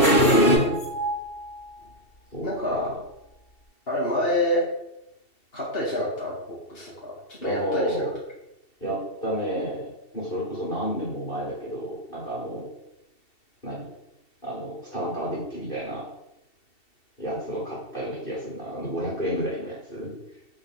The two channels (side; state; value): right; late; 2.7 ms